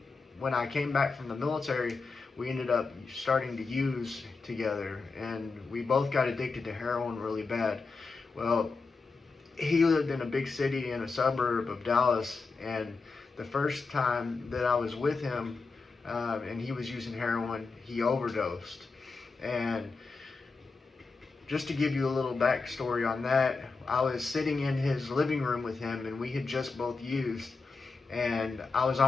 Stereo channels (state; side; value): quieter; right; 4.3 dB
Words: when I came back from the military, we ended up starting to use together. And we both got addicted to heroin really bad. Well, he lived in a big city in a suburb of Dallas, and the first time that I was with him and he was using heroin, he overdosed. And just to give you a little backstory on that, I was sitting in his living room with him, and we had just both used, and I was